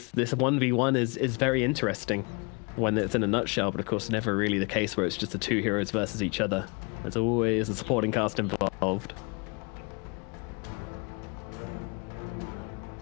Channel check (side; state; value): right; quieter; 32.0 dB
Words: 1v1 is very interesting when it's in a nutshell, but of course never really the case where it's just the two heroes versus each other. There's always a supporting cast involved.